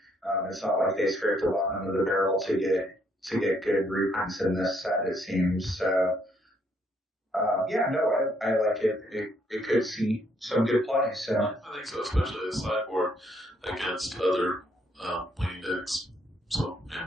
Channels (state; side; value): normal; both; correlation 0.70